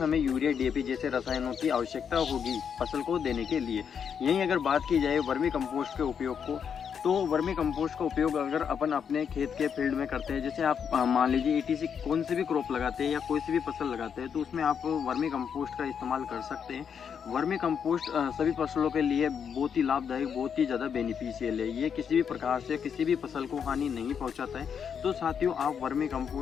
हमें यूरिया डीएपी जैसे रसायनों की आवश्यकता होगी फसल को देने के लिए। यहीं अगर बात की जाए वर्मी कंपोस्ट के उपयोग को, तो वर्मी कंपोस्ट का उपयोग अगर अपन अपने खेत के फील्ड में करते हैं, जैसे आप मान लीजिए ईटीसी कौन सी भी क्रॉप लगाते हैं या कोई सी भी फसल लगाते हैं तो उसमें आप वर्मी कंपोस्ट का इस्तेमाल कर सकते हैं। वर्मी कंपोस्ट सभी फसलों के लिए बहुत ही लाभदायक, बहुत ही ज़्यादा बेनिफिशियल है। ये किसी भी प्रकार से किसी भी फसल को हानि नहीं पहुंचाता है। तो साथियों, आप वर्मी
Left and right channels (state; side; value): quieter; right; 7.3 dB